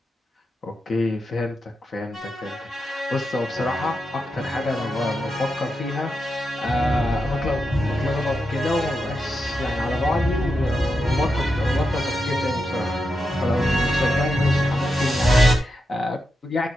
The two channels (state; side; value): normal; both; correlation 0.87